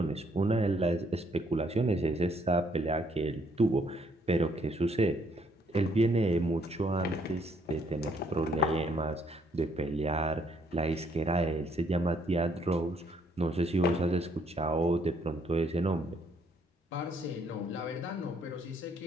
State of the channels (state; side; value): normal; both; correlation 0.68